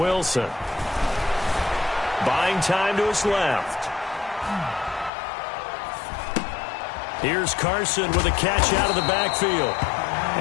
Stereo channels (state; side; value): drops out; right; at 5.1 s